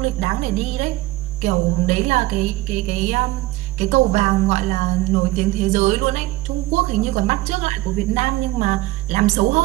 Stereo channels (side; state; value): left; quieter; 18.3 dB